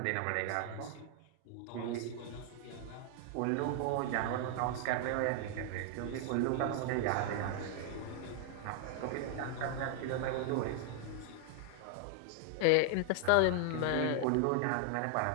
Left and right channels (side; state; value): both; different; correlation 0.00